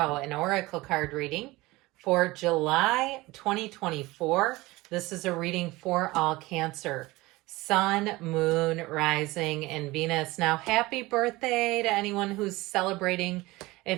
and oracle card reading for July 2024. This is a reading for all Cancer, Sun, Moon, Rising, and Venus. Now, happy birthday to anyone who's celebrating.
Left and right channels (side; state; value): left; quieter; 20.5 dB